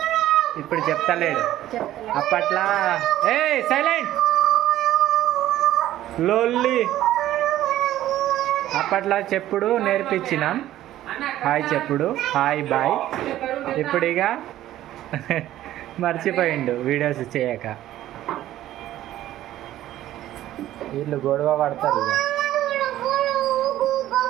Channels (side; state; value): left; quieter; 13.6 dB